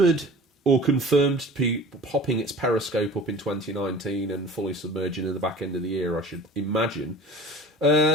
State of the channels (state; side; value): normal; both; correlation 0.42